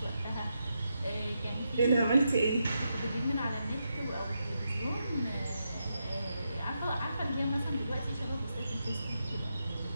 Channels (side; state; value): both; inverted; correlation -0.84